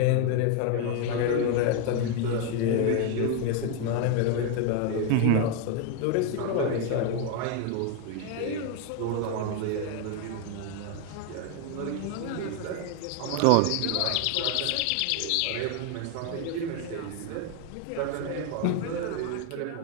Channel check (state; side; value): different; both; correlation 0.01